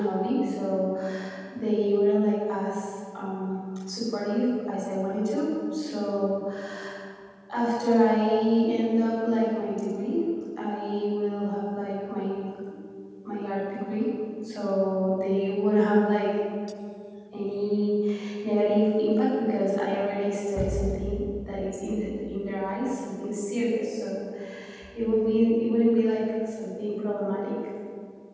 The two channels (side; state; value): both; identical; correlation 1.00